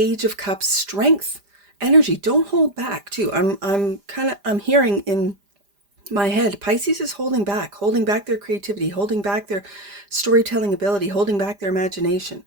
of Cups strength energy. Don't hold back too. I'm hearing in my head, Pisces is holding back their creativity, holding back their storytelling ability, holding back their imagination.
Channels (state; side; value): late; left; 5.0 ms